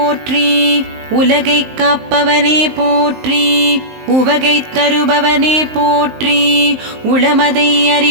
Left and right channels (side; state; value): left; late; 19 ms